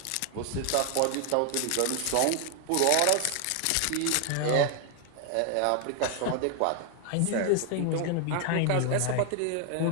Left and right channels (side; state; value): both; different; correlation 0.00